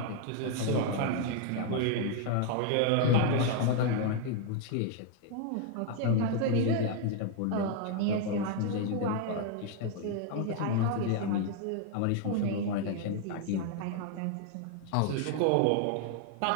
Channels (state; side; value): different; both; correlation 0.00